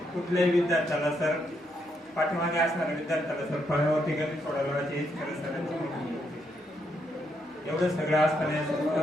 कुठल्याही विद्यार्थ्याला सर पाठीमागे असणाऱ्या विद्यार्थ्याला सर फळ्यावरती गणित सोडवलं हेच खरं सरांची मोठी गोष्ट. एवढं सगळं असताना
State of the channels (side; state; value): both; normal; correlation 0.77